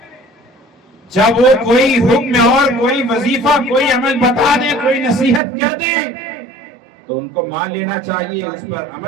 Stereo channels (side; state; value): left; drops out; at 5.4 s